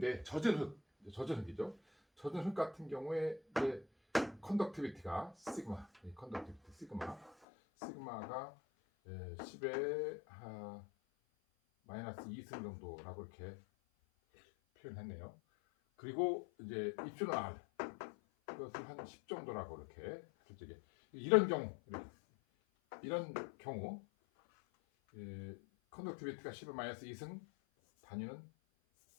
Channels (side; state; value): right; drops out; at 7.3 s